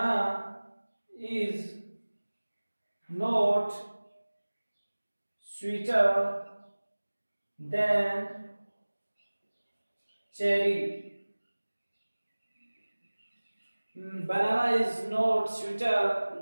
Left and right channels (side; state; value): both; inverted; correlation -1.00